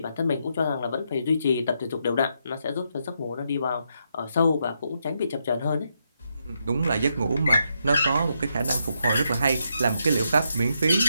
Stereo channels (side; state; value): both; inverted; correlation -0.80